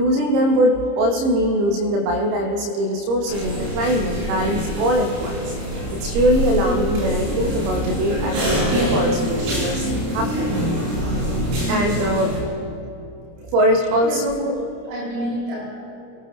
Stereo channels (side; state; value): left; late; 30 ms